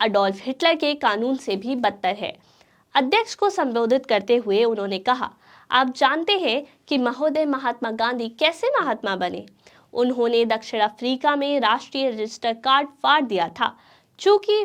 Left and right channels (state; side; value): identical; both; correlation 1.00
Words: अडोल्फ हिटलर के कानून से भी बदतर है। अध्यक्ष को संबोधित करते हुए उन्होंने कहा, आप जानते हैं कि महोदय महात्मा गांधी कैसे महात्मा बने? उन्होंने दक्षिण अफ्रीका में राष्ट्रीय रजिस्टर कार्ड फाड़ दिया था।